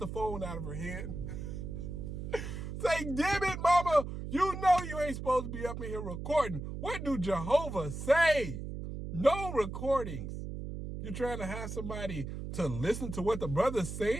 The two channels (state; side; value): noise; right; hum, 7 dB below the sound